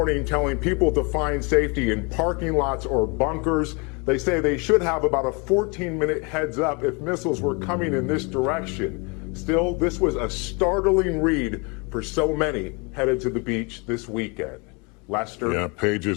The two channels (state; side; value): quieter; right; 31.0 dB